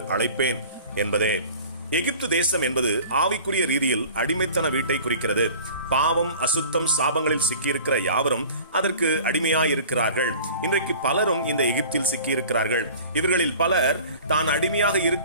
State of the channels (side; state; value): both; inverted; correlation -0.44